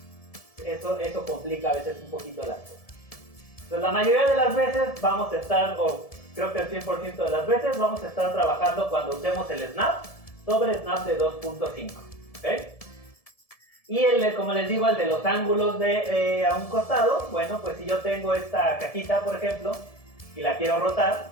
Eso complica a veces un poquito las cosas. Entonces, la mayoría de las veces vamos a estar, o creo que el 100% de las veces, vamos a estar trabajando cuando usemos el snap sobre snap de 2.5, ¿ok? Y como les digo, el de los ángulos a un costado, bueno, pues si yo tengo esta cajita, por ejemplo, y la quiero rotar,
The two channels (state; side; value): late; right; 1.7 ms